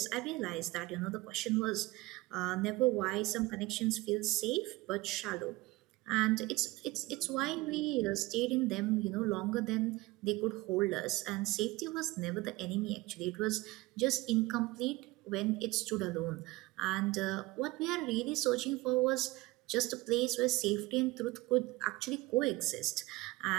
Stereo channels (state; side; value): quieter; left; 20.8 dB